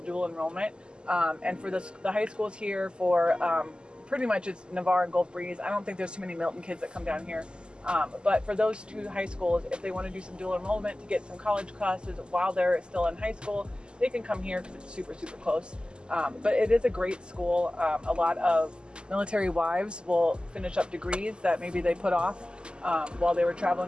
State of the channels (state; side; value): late; left; 0.049 ms